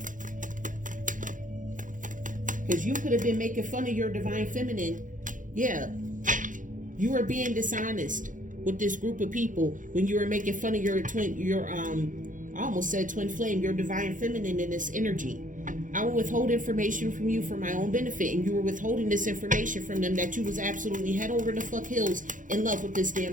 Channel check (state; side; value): late; left; 0.38 ms